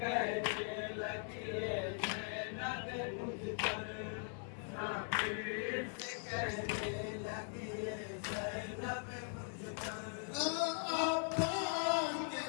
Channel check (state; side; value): silent; right; 51 dB below the other